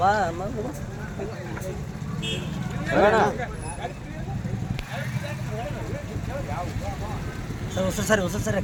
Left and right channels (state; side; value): identical; both; correlation 1.00